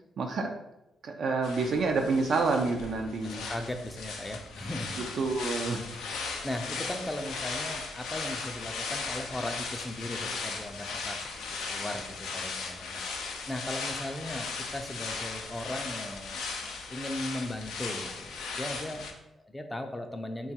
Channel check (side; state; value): both; normal; correlation 0.73